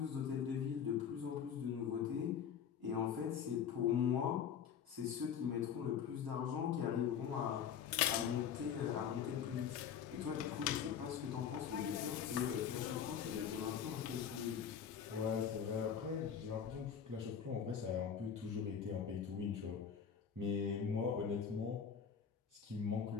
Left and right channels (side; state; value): right; quieter; 7.7 dB